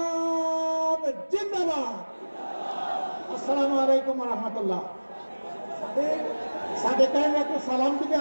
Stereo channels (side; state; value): both; inverted; correlation -1.00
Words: জিন্দাবাদ। আসসালামু আলাইকুম ওয়া রাহমাতুল্লাহ। সাথে একটু সালাম দিবে